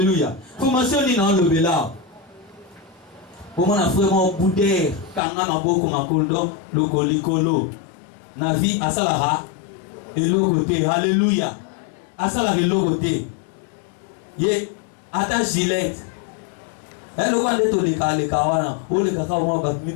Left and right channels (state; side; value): drops out; right; at 5.2 s